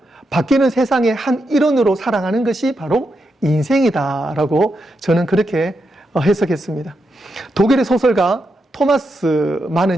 바뀌는 세상의 한 일원으로 살아가는 것이 바로 인생이다라고 저는 그렇게 해석했습니다. 독일의 소설가 토마스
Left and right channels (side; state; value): both; normal; correlation 0.84